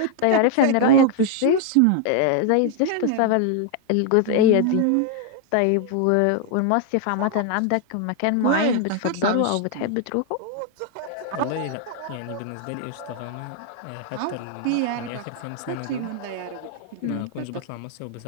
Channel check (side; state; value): both; different; correlation 0.00